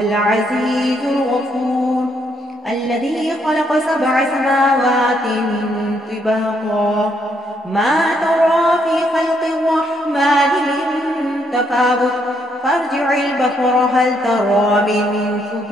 الغفور، الذي خلق 7 سماوات طباقا ما ترى في خلق الرحمن من تفاوت فارجع البصر هل ترى من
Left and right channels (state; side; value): normal; both; correlation 0.73